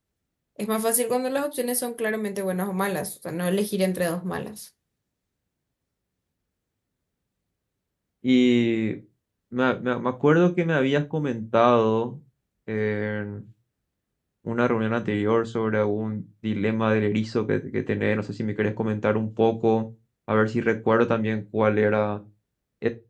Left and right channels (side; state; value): both; identical; correlation 1.00